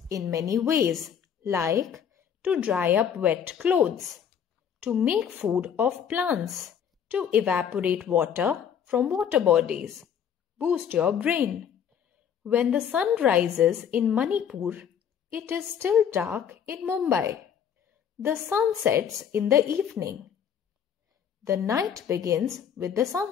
in many ways, like to dry up wet clothes, to make food of plants, to evaporate water from water bodies, boost your brain. When the sun rises in Manipur, it is still dark in Mumbai. The sun sets in the evening. The night begins with the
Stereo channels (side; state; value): right; quieter; 8.3 dB